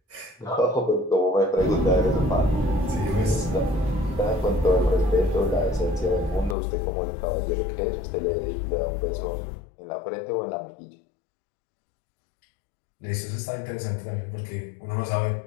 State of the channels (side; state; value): right; drops out; at 6.6 s